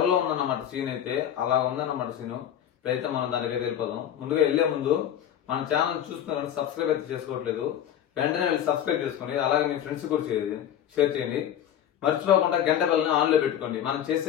లో ఉందన్నమాట సీన్ అయితే. అలా ఉందన్నమాట సీన్. ఇప్పుడైతే మనం దానికి వెళ్ళిపోదాం. ముందుగా వెళ్లే ముందు మన ఛానల్ చూస్తున్నారు, సబ్స్క్రైబ్ అయితే చేసుకోవట్లేదు, వెంటనే వెళ్ళి సబ్స్క్రైబ్ చేసుకోండి. అలాగే మీ ఫ్రెండ్స్ కూడా షేర్ చేయండి. మర్చిపోకుండా గంట బెల్ని ఆన్ లో పెట్టుకోండి. మనం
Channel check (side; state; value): right; quieter; 10.3 dB